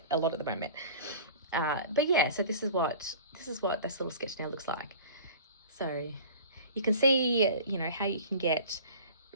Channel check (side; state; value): both; inverted; correlation -0.41